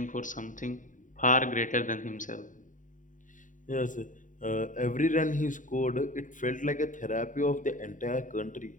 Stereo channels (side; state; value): right; late; 0.37 ms